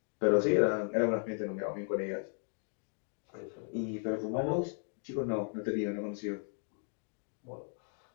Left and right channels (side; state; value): right; silent; 54 dB below the other